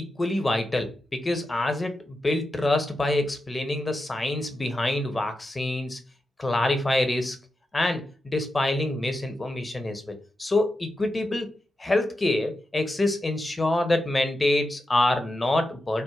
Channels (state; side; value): normal; both; correlation 0.89